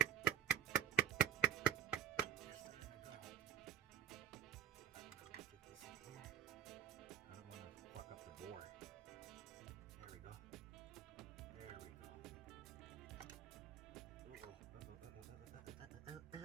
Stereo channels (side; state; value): left; quieter; 11.2 dB